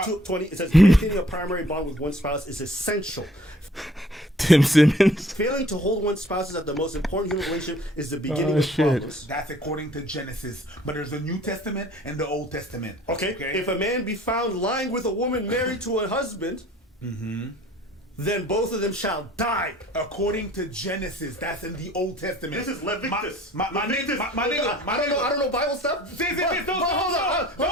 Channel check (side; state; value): both; normal; correlation 0.54